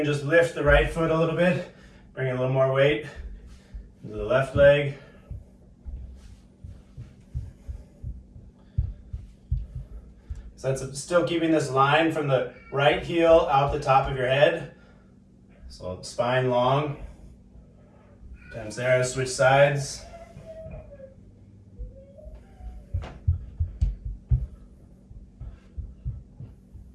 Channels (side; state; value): both; identical; correlation 1.00